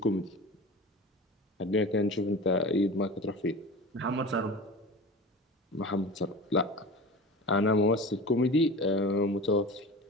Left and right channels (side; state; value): both; normal; correlation 0.35